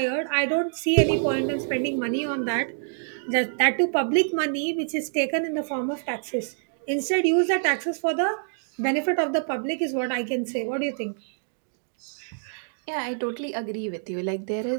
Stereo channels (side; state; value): left; silent; digital silence